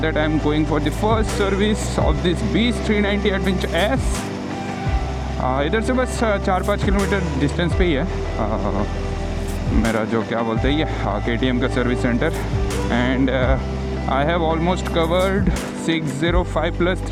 I am going for the first service of this beast 390 adventure S. इधर से बस 4-5 किलोमीटर डिस्टेंस पे ही है मेरा जो क्या बोलते हैं ये KTM का service centre. And I have almost covered 605 +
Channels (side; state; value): both; identical; correlation 1.00